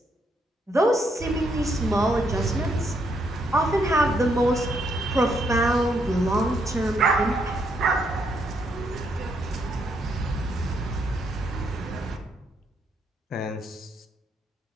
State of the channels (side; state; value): both; normal; correlation 0.75